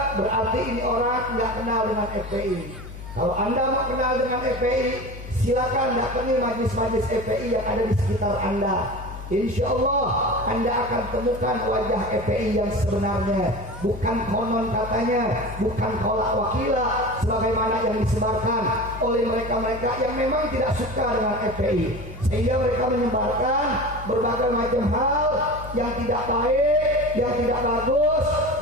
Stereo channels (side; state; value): left; noise; hum, 12 dB below the sound